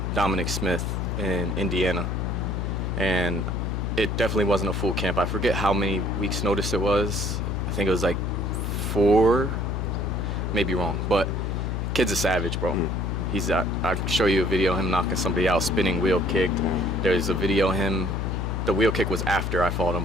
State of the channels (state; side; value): noise; left; hum, 1 dB below the sound